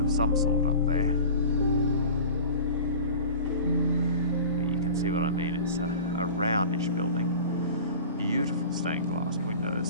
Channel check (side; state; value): both; inverted; correlation -0.39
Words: some sort up there. But you can see what I mean, it's a roundish building. Beautiful stained glass